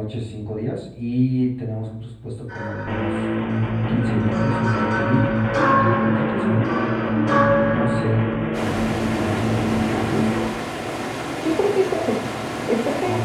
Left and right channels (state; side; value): identical; both; correlation 1.00